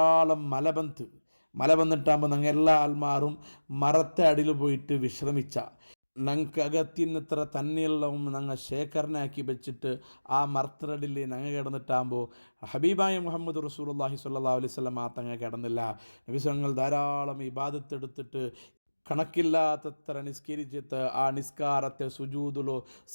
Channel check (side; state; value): both; inverted; correlation -1.00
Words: മല വന്നിട്ടാകുമ്പോൾ ഞങ്ങൾ എല്ലാ ആൾമാരും മരത്തെ അടിയിൽ പോയിട്ട് വിശ്രമിച്ച ഞങ്ങൾക്ക് അകത്തിന്നിത്ര തന്നെയെല്ലാം ഞങ്ങൾ ശേഖരണയാക്കി വെച്ചിട്ട് ആ മരത്തടിയിൽ ഞങ്ങൾ കിടന്നിട്ടാകുമ്പോൾ ഹബീബായ മുഹമ്മദ് റസൂലുള്ളാഹി സ്വല്ലല്ലാഹു അലൈഹി വസല്ലമ തങ്ങൾ കിടന്നില്ല. നബി തങ്ങൾ ധാരാളം ഇബാദത്ത് എടുത്തിട്ട് കണക്കില്ലാത്തത്ര നിസ്കരിച്ചിട്ട് ആ നിസ്കാരത്തെ സുജൂദിലോ,